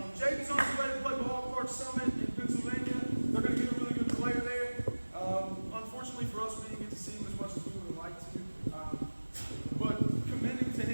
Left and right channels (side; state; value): both; inverted; correlation -1.00